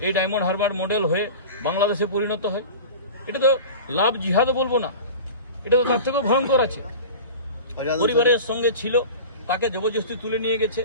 এই ডায়মন্ড হারবার মডেল হয়ে বাংলাদেশে পরিণত হয়। এটা তো লাভ জিহাদও বলবো না, এটা তো তার থেকেও ভয়ঙ্কর আছে। পরিবারের সঙ্গে ছিল, তাকে জবরদস্তি তুলে নিয়ে গেছে,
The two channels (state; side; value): inverted; both; correlation -0.34